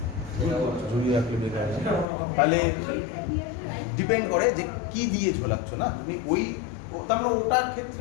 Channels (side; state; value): right; drops out; at 2.1 s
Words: ঝুলিয়ে রাখলে বেকার তাহলে ডিপেন্ড করে যে কি দিয়ে ঝোলাচ্ছ না তুমি ওই তার মানে ওটার